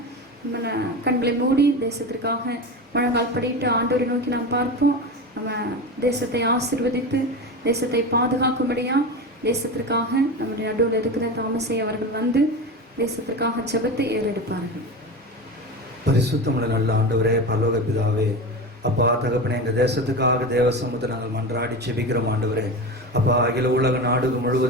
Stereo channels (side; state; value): both; normal; correlation 0.24